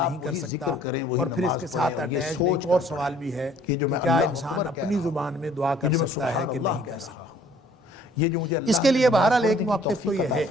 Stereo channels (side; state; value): both; normal; correlation 0.57